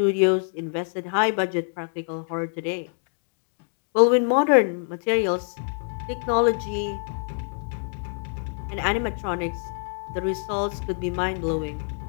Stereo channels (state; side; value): silent; right; 61 dB below the other